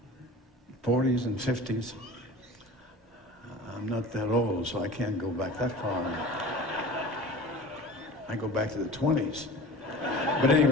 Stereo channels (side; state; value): both; normal; correlation 0.38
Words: and 50s. I'm not that old, so I can't go back that far. I go back to the 20s. But